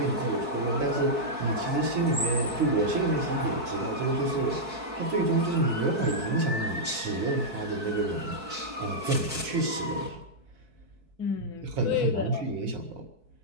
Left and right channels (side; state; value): left; late; 4.6 ms